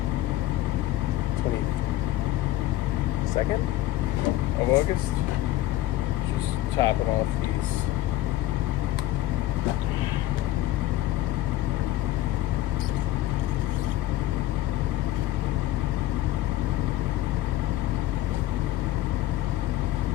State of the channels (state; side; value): quieter; right; 14.5 dB